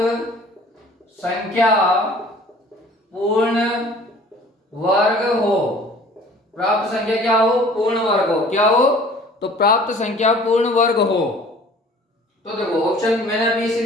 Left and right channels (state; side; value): normal; both; correlation 0.49